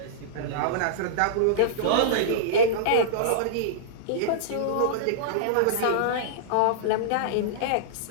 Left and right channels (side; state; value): both; different; correlation -0.03